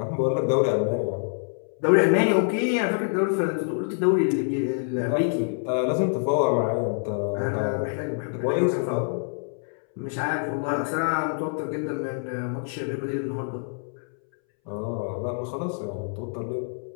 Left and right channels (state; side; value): silent; right; 61 dB below the other